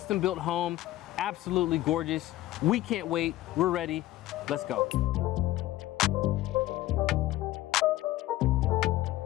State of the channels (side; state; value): right; quieter; 15.7 dB